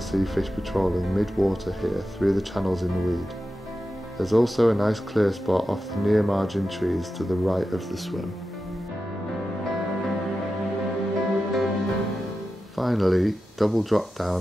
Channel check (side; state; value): both; normal; correlation 0.92